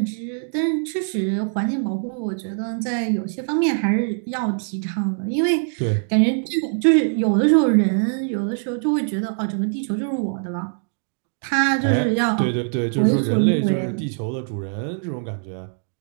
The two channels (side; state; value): left; silent; digital silence